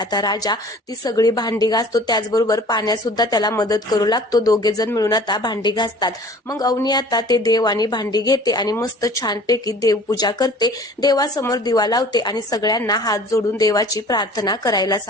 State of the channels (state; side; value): normal; both; correlation 0.47